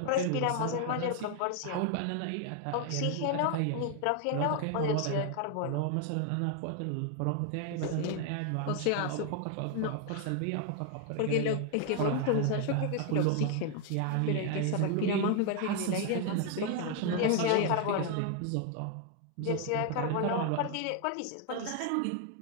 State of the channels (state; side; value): different; both; correlation 0.00